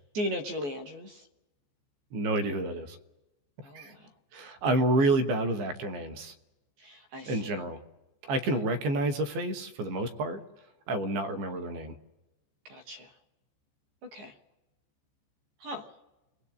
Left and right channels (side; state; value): left; late; 15 ms